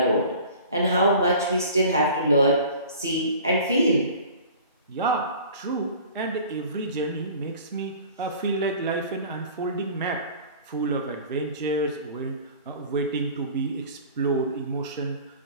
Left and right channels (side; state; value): both; inverted; correlation -0.44